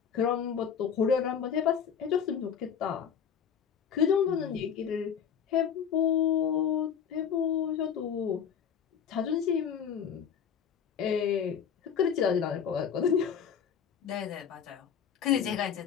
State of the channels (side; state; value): right; quieter; 7.7 dB